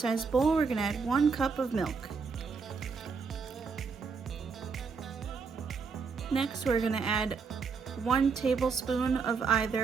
bowl, we're going to add 1 cup of milk. Next, we're going to add 1 tablespoon of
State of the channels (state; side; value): quieter; left; 5.2 dB